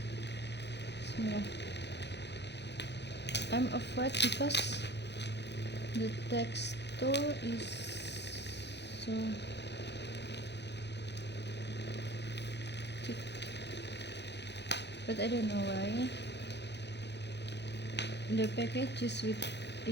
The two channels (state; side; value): late; right; 0.50 ms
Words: Bismillah. I'm afraid because the texture is so thick, but I don't know why. The package is with